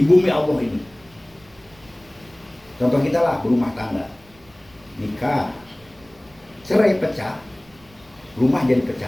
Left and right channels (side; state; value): right; noise; rumble, 28 dB below the sound